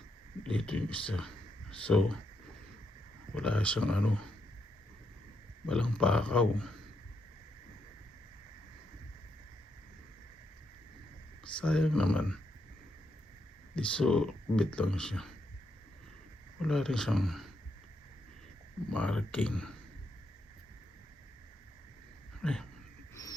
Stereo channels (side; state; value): both; normal; correlation 0.79